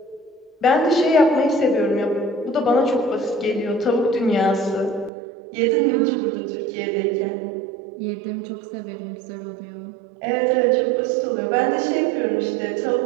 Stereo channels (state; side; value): drops out; left; at 5.1 s